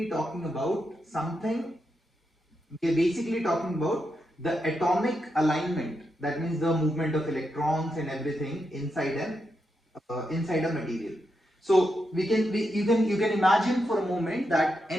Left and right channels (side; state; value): both; normal; correlation 0.85